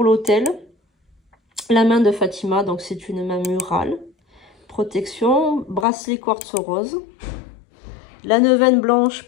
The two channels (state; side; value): drops out; right; at 5.9 s